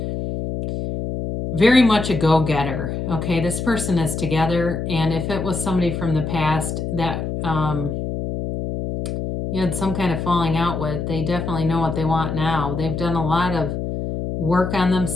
very much a go-getter. Okay, this person is together, and if it was somebody from the past that you had some kind of falling out with, they definitely know what they want now. They've done a lot of work on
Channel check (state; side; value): noise; left; hum, 4 dB below the sound